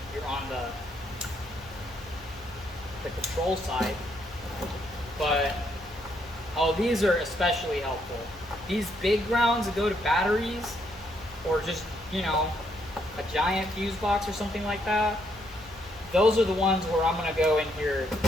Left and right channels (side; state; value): left; noise; hum, 21 dB below the sound